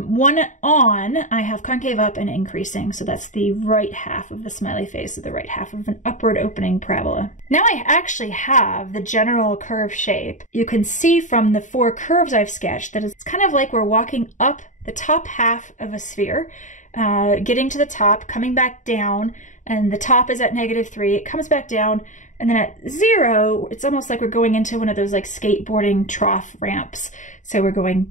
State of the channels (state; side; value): late; right; 0.36 ms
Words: 1 on, I have concave up and increasing, so that's the right half of the smiley face, or the right half of an upward opening parabola. Now I actually have the general curve shape. You can see from the 4 curves I've sketched that it's kind of like we're walking up the top half of a sphere, getting to the top, coming back down, and the top is at -3, it comes back down, and then at 0, it's almost like we're going into one of those like skateboarding trough ramps. So we're going